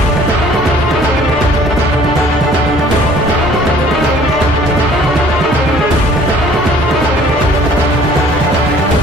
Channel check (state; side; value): normal; both; correlation 0.54